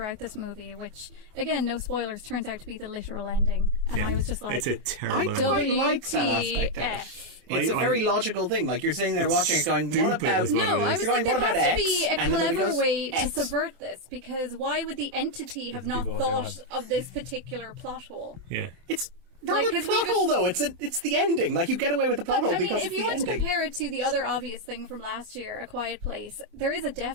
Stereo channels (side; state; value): left; late; 24 ms